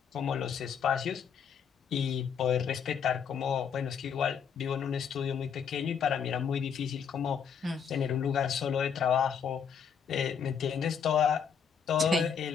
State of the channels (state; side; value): quieter; right; 7.1 dB